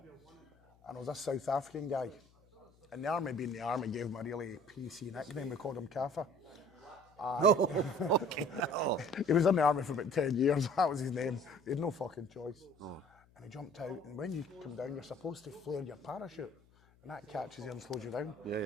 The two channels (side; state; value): left; noise; hum, 30 dB below the sound